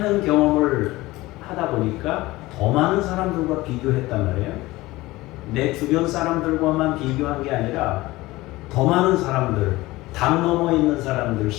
경험을 하다 보니까 더 많은 사람들과 비교했단 말이에요. 내 주변 사람들과만 비교한 게 아니라 더 많은 사람들, 담 넘어 있는 사람들,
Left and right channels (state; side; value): quieter; right; 19.3 dB